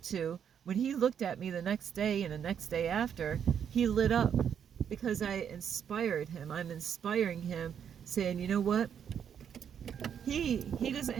to, when he looked at me the next day and the next day after, he lit up because I inspired him. I'm inspiring him, saying, you know what? He doesn't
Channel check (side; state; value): left; quieter; 8.3 dB